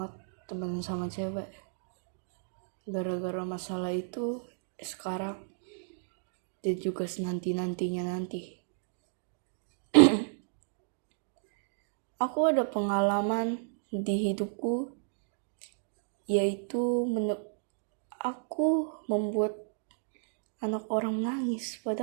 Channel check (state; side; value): silent; left; digital silence